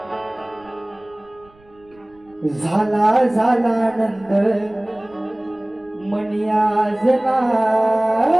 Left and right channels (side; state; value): right; noise; rumble, 29 dB below the sound